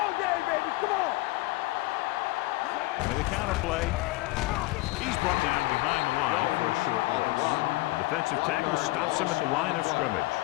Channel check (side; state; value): right; quieter; 20.7 dB